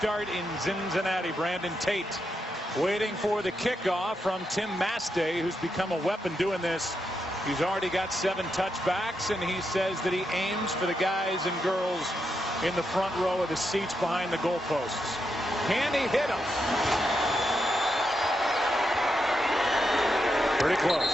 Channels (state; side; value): normal; both; correlation 0.83